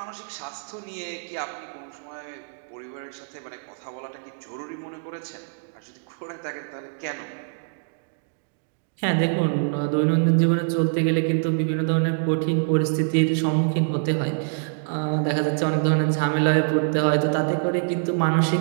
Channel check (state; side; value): silent; left; digital silence